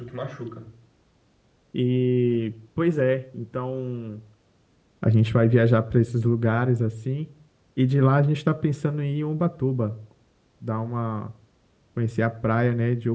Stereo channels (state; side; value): identical; both; correlation 1.00